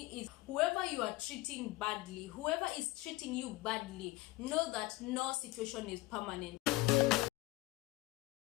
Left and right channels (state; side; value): quieter; right; 20.1 dB